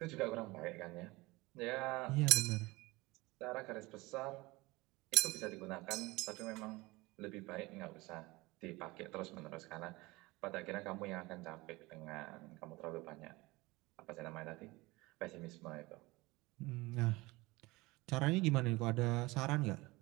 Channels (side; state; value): left; quieter; 22.0 dB